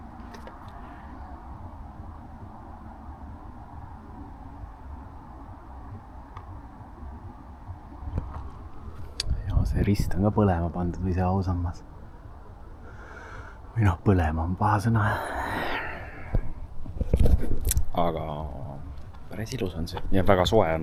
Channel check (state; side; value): identical; both; correlation 1.00